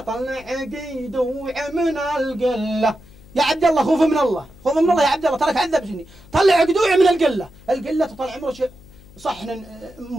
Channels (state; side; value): noise; left; hum, 23 dB below the sound